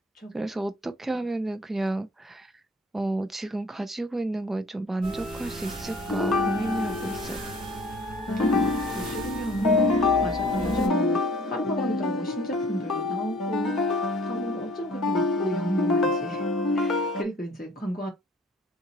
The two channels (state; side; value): normal; both; correlation 0.52